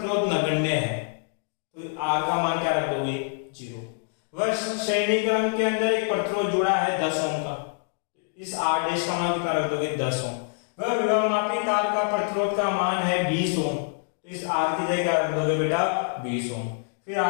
नगण्य है तो आर का मान क्या रख दोगे 0। वह श्रेणी क्रम के अंदर एक प्रतिरोध जुड़ा है 10 ओम का, इस आर डैश का मान कितना रख दोगे 10 ओम। वह विभवमापी तार का प्रतिरोध का मान है 20 ओम, तो इस आर की जगह क्या रख दोगे बेटा 20 ओम। फिर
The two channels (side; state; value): right; silent; 61 dB below the other